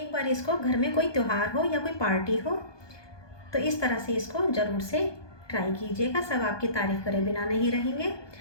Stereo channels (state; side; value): late; right; 1.2 ms